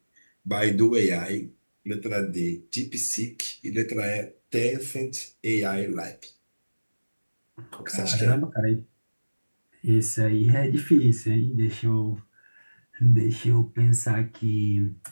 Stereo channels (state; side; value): inverted; both; correlation -1.00